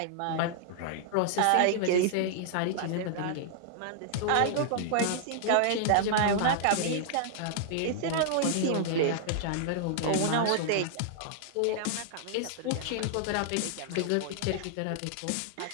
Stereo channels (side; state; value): both; different; correlation -0.01